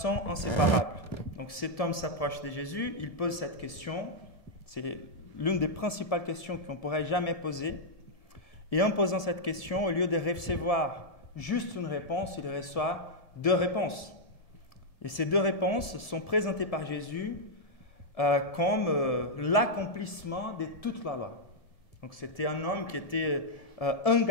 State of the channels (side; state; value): right; late; 1.7 ms